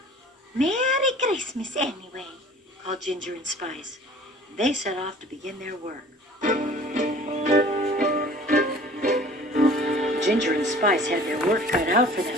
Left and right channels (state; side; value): normal; both; correlation 0.48